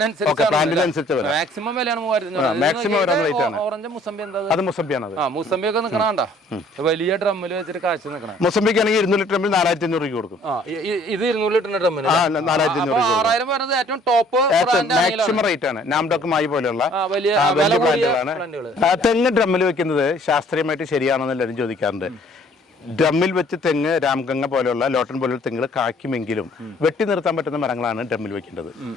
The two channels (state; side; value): normal; both; correlation 0.58